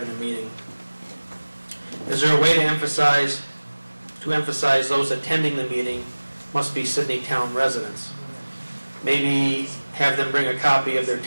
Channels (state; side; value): inverted; both; correlation -1.00